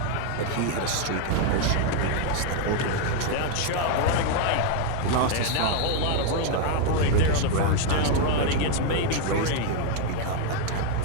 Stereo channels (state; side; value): different; both; correlation 0.00